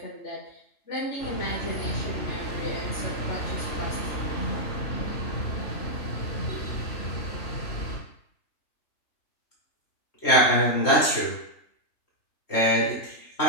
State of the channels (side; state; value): right; late; 3.1 ms